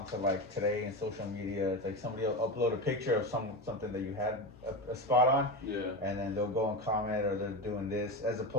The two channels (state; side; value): normal; both; correlation 0.20